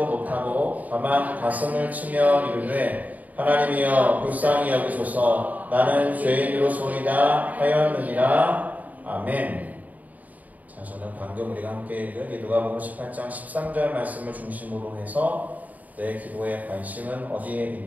못하고 다만 가슴을 치며 이르되 하나님이여 불쌍히 여기소서 나는 죄인으로소이다 하였느니라. 아멘. 자, 저는 방금 우리가 함께 읽은 이 누가복음 18장 13절 말씀을 중심으로 해서 내 기도의 관심은 어디에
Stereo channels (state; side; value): late; left; 0.076 ms